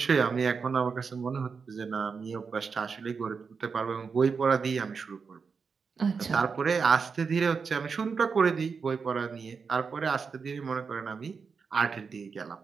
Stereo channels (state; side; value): quieter; left; 5.4 dB